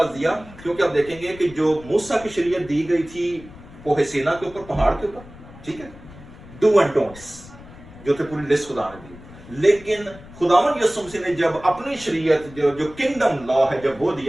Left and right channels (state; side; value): noise; left; rumble, 19 dB below the sound